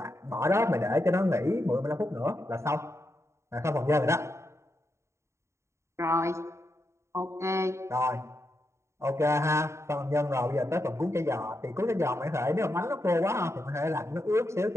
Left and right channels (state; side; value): late; left; 0.14 ms